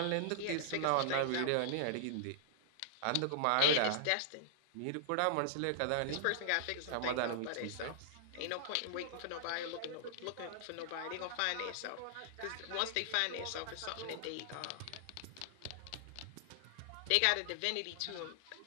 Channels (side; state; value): both; different; correlation -0.01